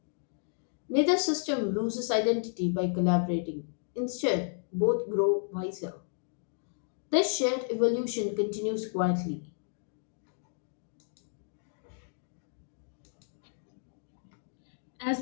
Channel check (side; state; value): right; silent; digital silence